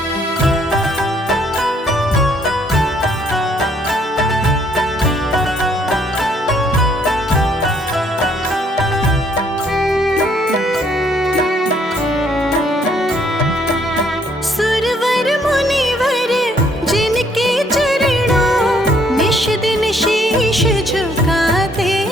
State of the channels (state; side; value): normal; both; correlation 0.66